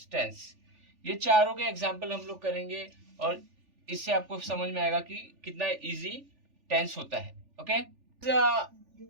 टेंस. ये चारों के एग्जाम्पल हम लोग करेंगे और इससे आपको समझ में आएगा कि कितना इजी टेंस होता है. Okay,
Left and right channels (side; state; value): left; late; 3.4 ms